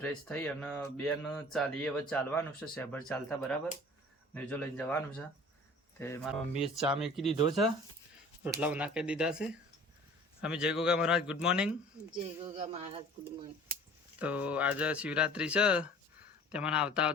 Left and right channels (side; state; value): both; normal; correlation 0.46